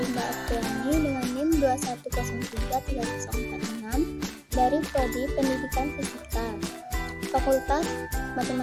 Apriani dengan NIM 2103346 dari Prodi Pendidikan Fisika, Fakultas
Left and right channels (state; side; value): identical; both; correlation 1.00